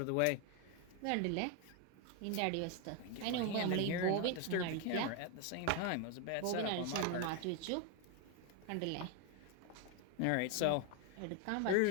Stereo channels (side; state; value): both; different; correlation 0.01